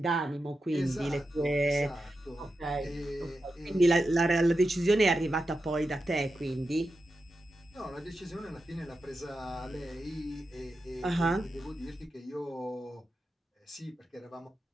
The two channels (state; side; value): normal; both; correlation 0.90